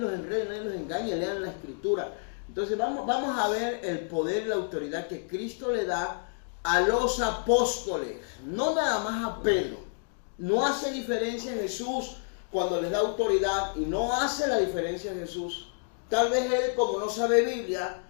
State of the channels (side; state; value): right; silent; digital silence